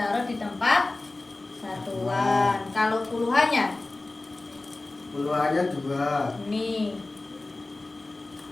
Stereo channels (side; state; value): right; quieter; 3.1 dB